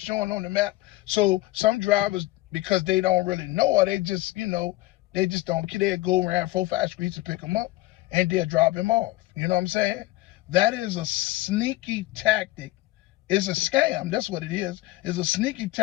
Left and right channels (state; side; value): quieter; right; 18.3 dB